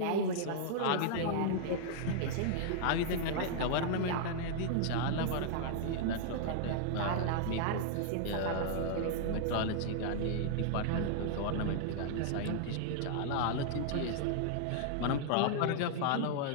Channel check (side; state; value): both; different; correlation -0.01